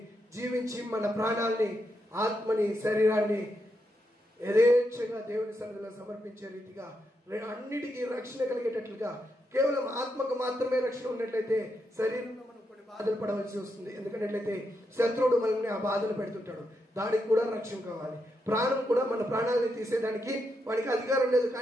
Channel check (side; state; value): both; normal; correlation 0.83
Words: జీవించి మన ప్రాణాల్ని, ఆత్మని, శరీరాన్ని యథేచ్ఛగా దేవుని సన్నిధిలో సమర్పించే రీతిగా అన్నిటికీ రక్షణ కలిగేటట్లుగా, కేవలం ఆత్మకు మాత్రమే రక్షణ ఉన్నట్లయితే శరీరంలో మనం కొన్ని బాధలు పడవలసి వస్తుంది. ఎందుకంటే శత్రువుడు మనల్ని ఆ బాధలు పెడుతుంటాడు, దానికి కూడా రక్షణ కావాలి. ప్రాణం కూడా, మన ప్రాణాలని తీసేదానికి వాడికి అధికారం లేదు.